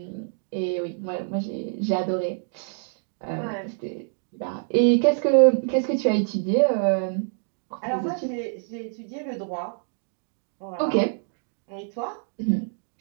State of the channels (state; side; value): silent; left; digital silence